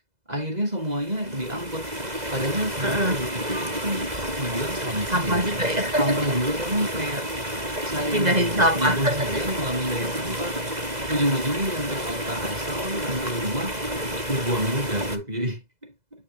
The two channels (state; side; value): late; left; 2.0 ms